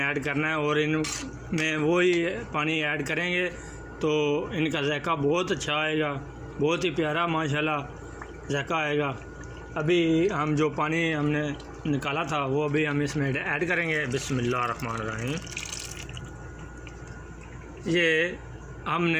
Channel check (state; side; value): identical; both; correlation 1.00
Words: करना है। और इनमें वो ही पानी ऐड करेंगे तो इनका जायका बहुत अच्छा आएगा, बहुत ही प्यारा माशाल्लाह जायका आएगा। अभी हम जो पानी हमने निकाला था वो अभी हम इसमें ऐड करेंगे। बिस्मिल्लाह रहमान रहीम। ये